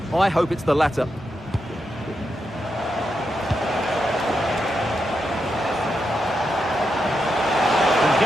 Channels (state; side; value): normal; both; correlation 0.85